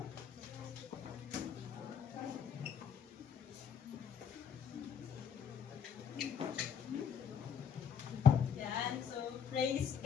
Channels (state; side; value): quieter; right; 7.5 dB